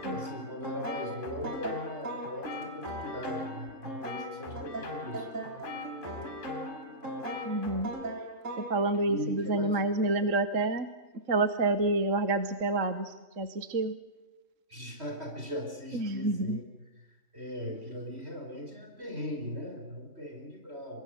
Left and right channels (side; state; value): left; late; 3.1 ms